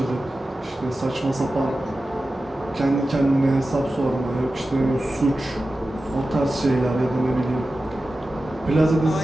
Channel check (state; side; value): normal; both; correlation 0.94